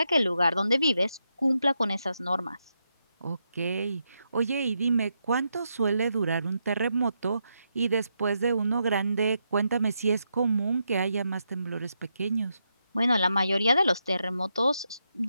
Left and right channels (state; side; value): inverted; both; correlation -0.83